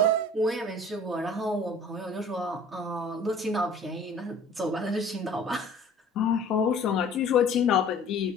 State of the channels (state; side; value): normal; both; correlation 0.48